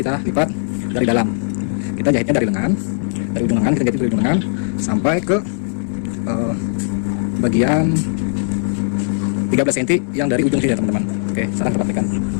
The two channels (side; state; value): right; silent; digital silence